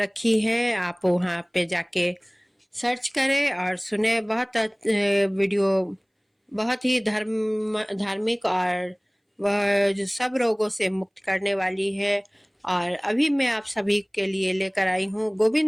है, आप वहाँ पे जाके सर्च करें और सुने। वीडियो बहुत ही धार्मिक और वह जो सब रोगों से मुक्त करने वाली है। और अभी मैं आप सभी के लिए लेकर आई हूँ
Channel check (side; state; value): both; identical; correlation 1.00